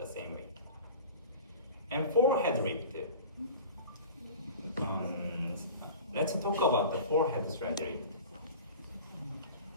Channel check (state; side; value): inverted; both; correlation -0.38